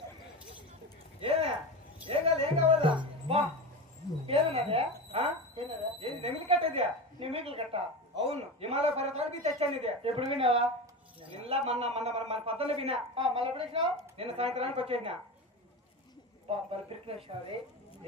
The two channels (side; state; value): both; normal; correlation 0.24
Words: ఏం కావాలా ఏమన్నదే నెమిలి కట్టేది నెమిలి కట్ట అవును హిమాలయ పర్వతానికి తెచ్చాను ఇది ఎప్పుడు విన్నావా నిన్న మన పద్దలు విన్నా మళ్ళీ ఎప్పుడు వచ్చినావు నిన్న సాయంత్రానికి వచ్చేసినా